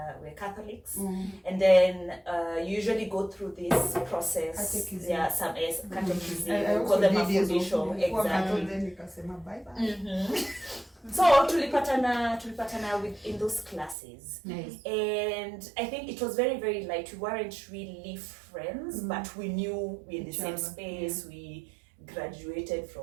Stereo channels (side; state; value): left; drops out; at 14.0 s